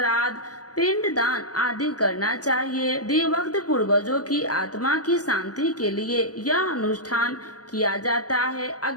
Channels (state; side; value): late; right; 0.68 ms